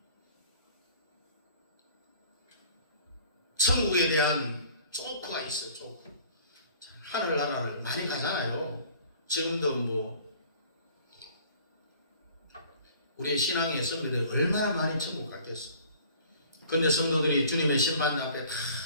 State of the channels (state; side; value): inverted; both; correlation -0.50